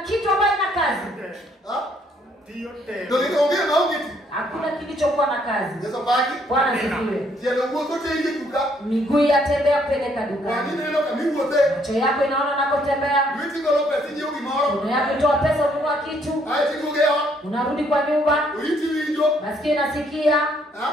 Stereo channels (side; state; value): both; normal; correlation 0.68